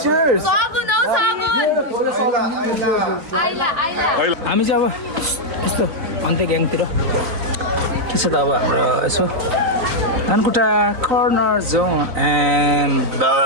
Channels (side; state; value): left; late; 3.9 ms